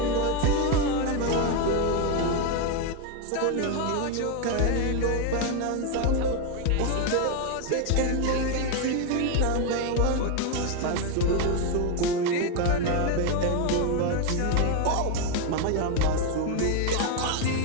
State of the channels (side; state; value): both; different; correlation 0.01